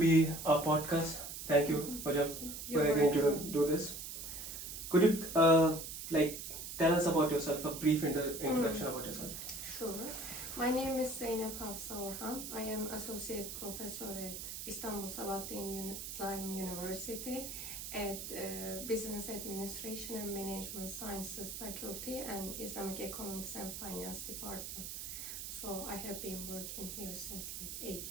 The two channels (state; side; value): noise; right; hiss, 7 dB below the sound